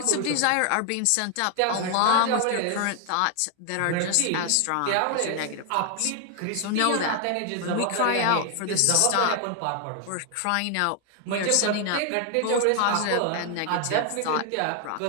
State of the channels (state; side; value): different; both; correlation 0.00